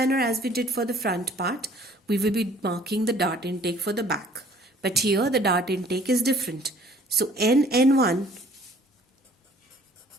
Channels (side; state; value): both; normal; correlation 0.55